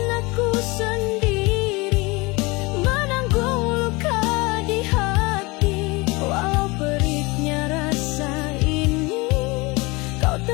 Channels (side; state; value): right; quieter; 25.1 dB